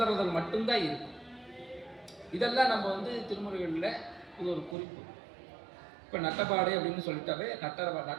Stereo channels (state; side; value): drops out; left; at 4.8 s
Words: மட்டும்தான் இருக்கும். இதெல்லாம் நம்ம திருமுறைகளில் இது ஒரு குறிப்பு. இப்போ நட்டபாடை அப்படின்னு சொல்லிட்டாவே,